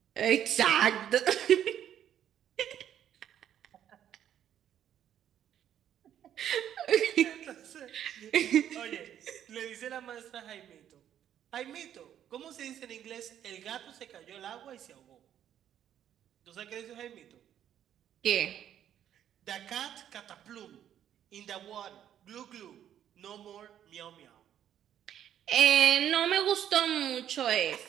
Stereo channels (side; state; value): left; quieter; 10.3 dB